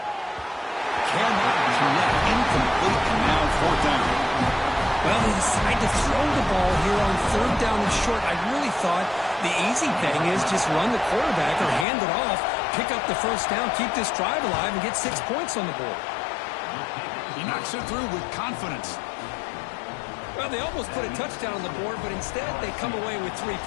Cannot connect, incomplete, and now fourth down. Well, they decide to throw the ball here on third down and short. I really thought the easy thing is just run the quarterback or hand it off, pick up the first down, keep this drive alive, and get 6 points on the board. He knocks it through with confidence. Well, they almost put a touchdown on the board, but instead they come away with 3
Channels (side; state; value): right; drops out; at 11.9 s